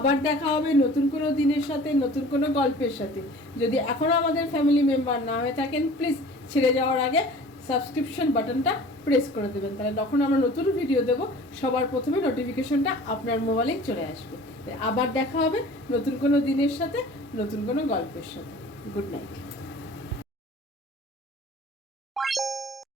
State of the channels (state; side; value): normal; both; correlation 0.45